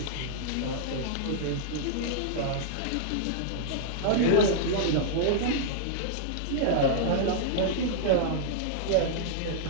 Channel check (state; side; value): different; both; correlation -0.01